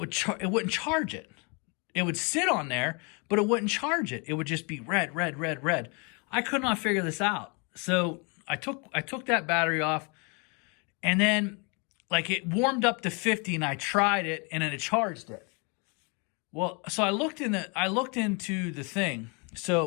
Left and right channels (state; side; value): quieter; right; 33.0 dB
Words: charge it. It would sit on there, but it wouldn't charge it. It would just be red, red, red, red. I could not figure this out. So I took that battery off, and then like it warmed up to 50, and I tried it, and then it charged it. Well, so I looked into the thing.